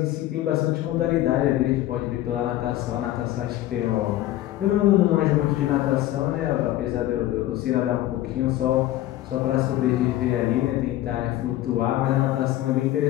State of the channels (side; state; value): right; quieter; 14.7 dB